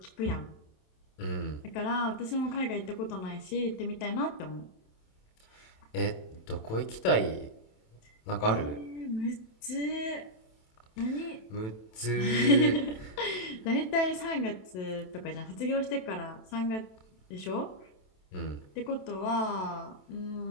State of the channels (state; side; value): late; right; 27 ms